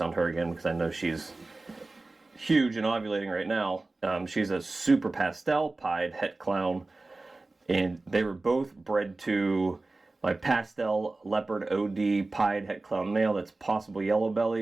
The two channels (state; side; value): quieter; left; 3.2 dB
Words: her again because I know she's huge and ovulating right now. She's a super pastel pied het clown, and they were both bred to my pastel leopard OD pied het clown male that's possible yellow